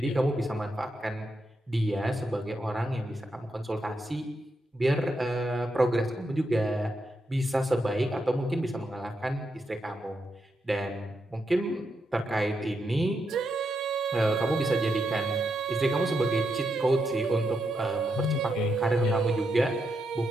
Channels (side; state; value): both; normal; correlation 0.83